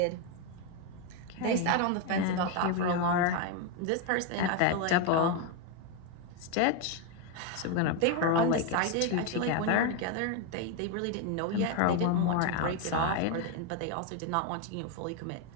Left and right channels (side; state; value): both; different; correlation 0.02